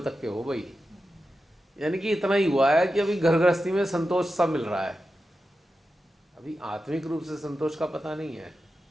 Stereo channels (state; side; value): normal; both; correlation 0.91